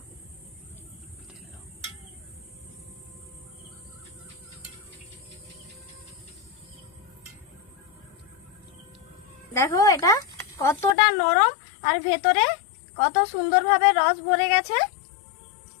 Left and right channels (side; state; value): right; drops out; at 11.0 s